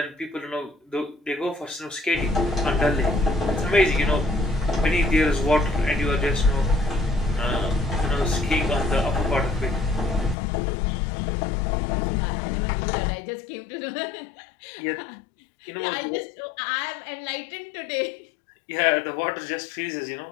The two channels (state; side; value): drops out; right; at 10.4 s